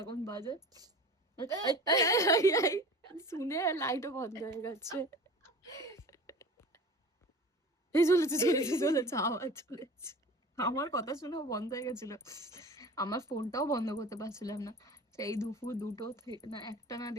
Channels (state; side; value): normal; both; correlation 0.38